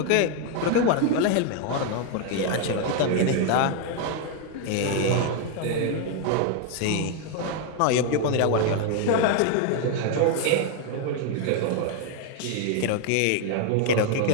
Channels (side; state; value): both; different; correlation 0.01